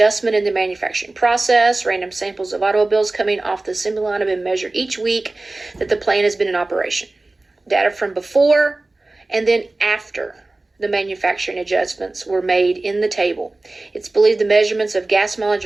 in the manufacturing process. Random samples of automobiles coming off the assembly line have been measured each week that the plant has been in operation. Data from before and then after the manufacturing adjustments were made in the table. It's believed the measurements of gas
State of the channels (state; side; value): quieter; left; 3.0 dB